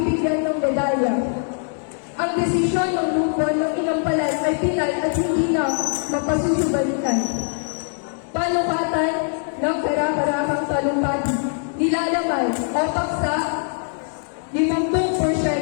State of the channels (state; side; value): silent; right; 64 dB below the other